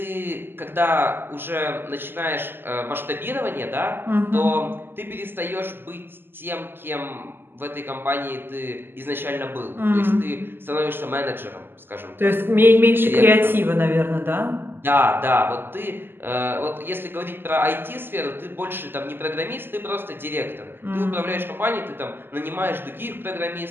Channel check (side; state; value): left; late; 0.10 ms